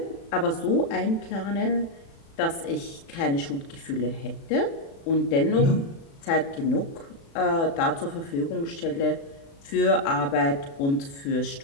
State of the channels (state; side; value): late; right; 36 ms